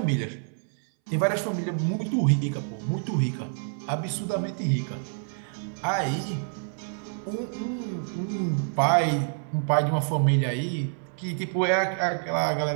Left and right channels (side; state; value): left; silent; 60 dB below the other